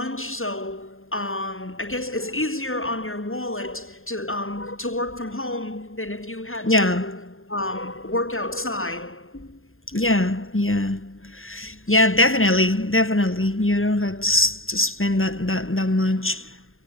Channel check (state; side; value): late; right; 0.60 ms